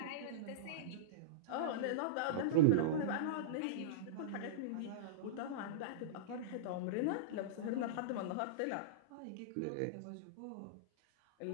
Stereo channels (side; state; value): both; different; correlation -0.04